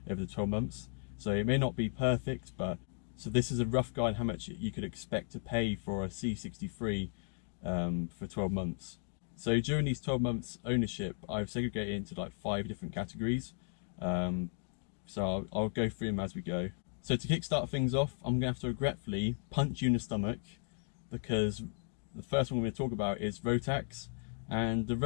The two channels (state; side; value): silent; right; 54 dB below the other